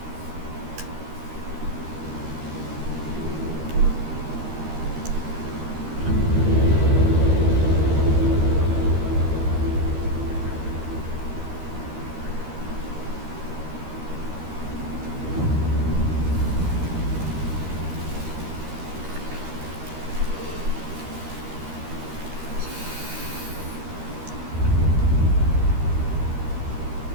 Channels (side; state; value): left; late; 13 ms